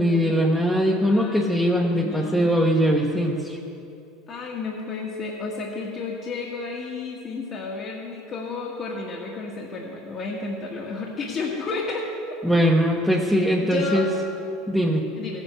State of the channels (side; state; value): both; normal; correlation 0.68